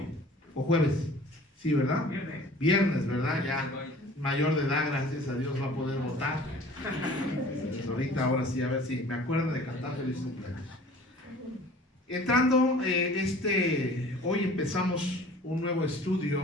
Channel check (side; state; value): both; normal; correlation 0.47